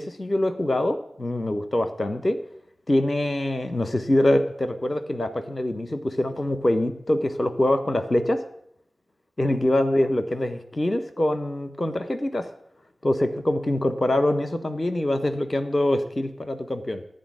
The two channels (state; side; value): normal; both; correlation 0.96